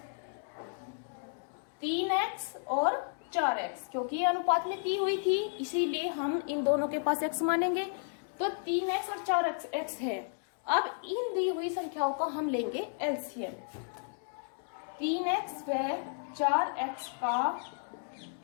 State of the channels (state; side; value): silent; right; digital silence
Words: 3x और 4x, क्योंकि ये अनुपात में दी हुई थी इसीलिए हम इन दोनों के पास x मानेंगे। तो 3x और 4x है। अब इन दी हुई संख्याओं का हम लेंगे एलसीएम। 3x व 4x का